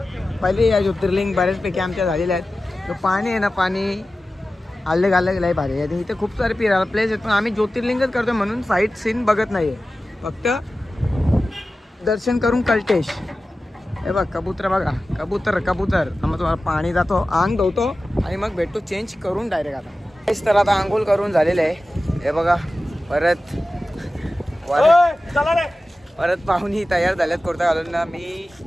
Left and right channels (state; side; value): normal; both; correlation 0.95